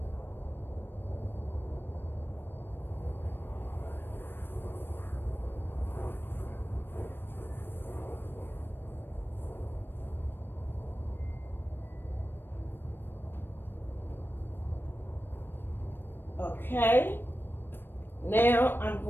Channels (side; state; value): right; late; 0.097 ms